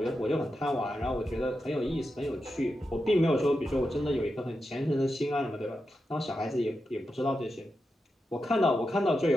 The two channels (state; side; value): normal; both; correlation 0.88